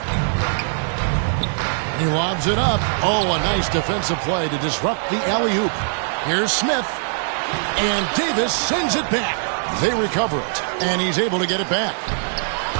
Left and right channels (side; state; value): left; silent; 65 dB below the other